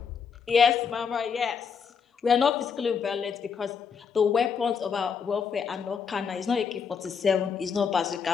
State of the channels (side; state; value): right; quieter; 6.4 dB